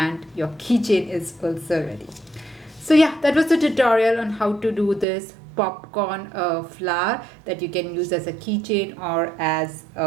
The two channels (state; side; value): drops out; left; at 5.1 s